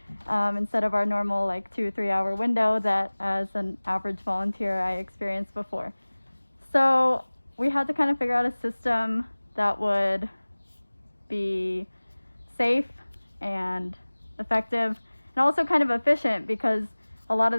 Instead of our normal 2-3 hour window that as an average volunteer I experienced before. So we had to kind of figure out a system that would be safe and effective and also kind of efficient, because a lot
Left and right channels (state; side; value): inverted; both; correlation -1.00